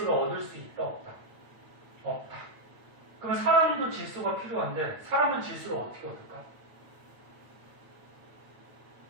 얻을 수 있다 없다? 없다. 그러면 사람도 질소가 필요한데 사람은 질소를 어떻게 얻을까?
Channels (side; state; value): left; late; 9.1 ms